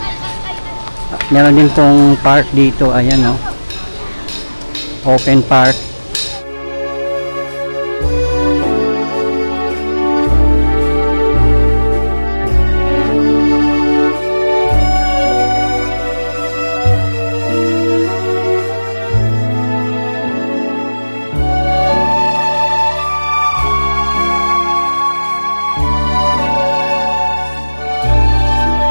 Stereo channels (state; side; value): inverted; both; correlation -1.00